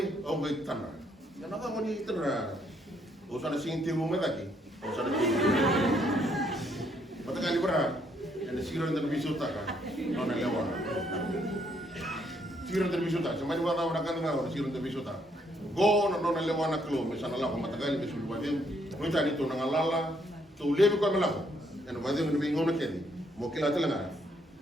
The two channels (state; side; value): normal; both; correlation 0.71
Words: o be tana ya na ka ni tana o sa sing ti mo daki o sa ni mata kan libra en siglo de visota ka non è lewa siglo de visota se mai va da una canna siglo de visota go no le wana klo me sana la ko matagali be sulu wadem no tani to na lala to lebe ko mala ko en wadem no bingo na kedi mo kila tala